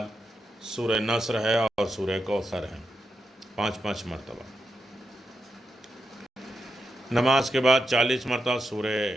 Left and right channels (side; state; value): both; normal; correlation 0.86